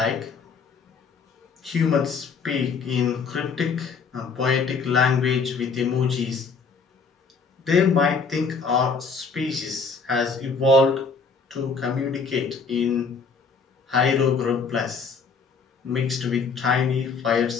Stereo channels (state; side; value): quieter; right; 5.2 dB